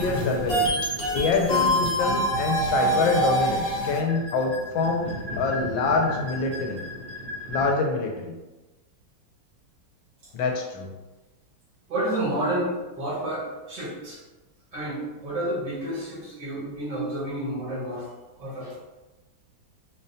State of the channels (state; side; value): normal; both; correlation 0.03